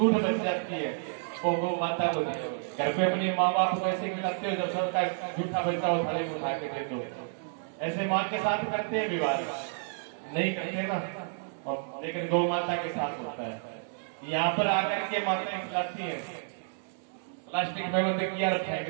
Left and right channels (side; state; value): left; silent; digital silence